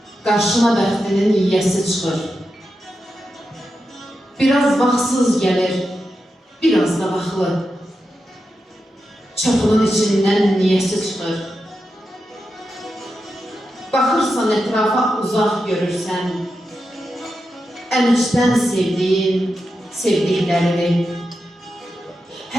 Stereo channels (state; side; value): normal; both; correlation 0.89